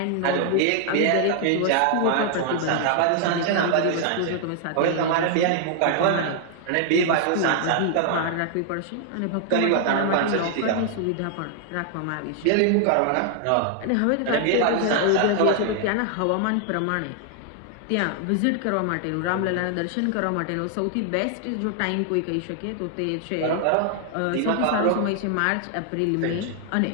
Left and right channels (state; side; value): different; both; correlation 0.00